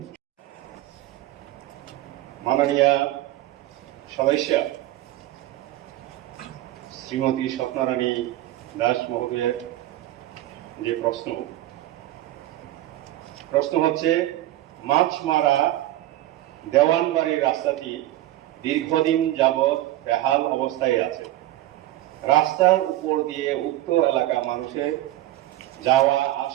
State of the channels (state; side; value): quieter; left; 15.1 dB